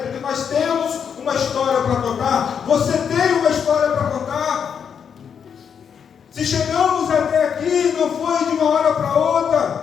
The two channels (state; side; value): quieter; right; 7.3 dB